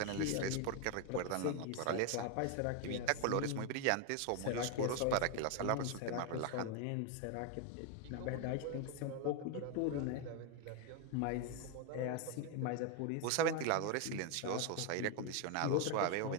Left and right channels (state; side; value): different; both; correlation 0.01